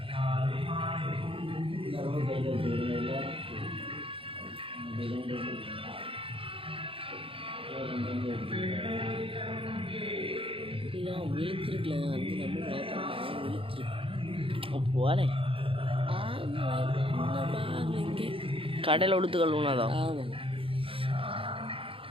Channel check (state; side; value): late; left; 0.26 ms